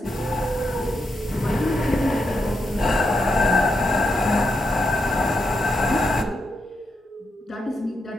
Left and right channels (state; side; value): normal; both; correlation 0.83